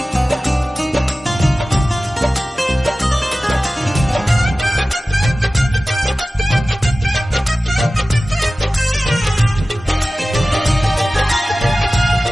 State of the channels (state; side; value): normal; both; correlation 0.96